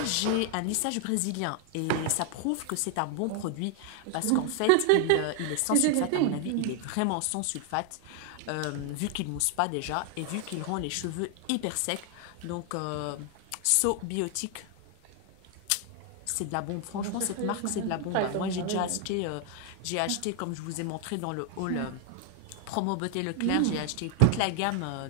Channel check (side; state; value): both; different; correlation 0.00